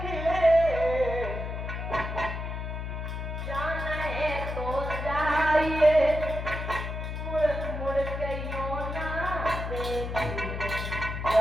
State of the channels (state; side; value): noise; left; hum, 5 dB below the sound